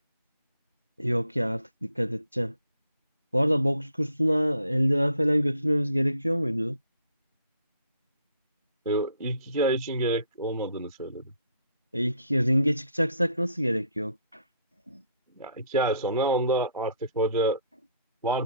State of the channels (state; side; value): inverted; both; correlation -0.65